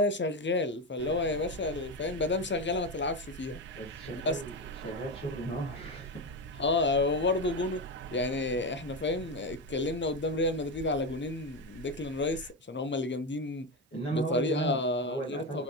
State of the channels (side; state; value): both; normal; correlation 0.15